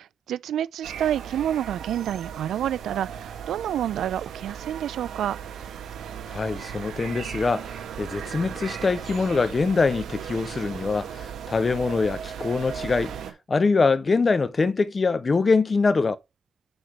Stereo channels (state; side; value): normal; both; correlation 0.84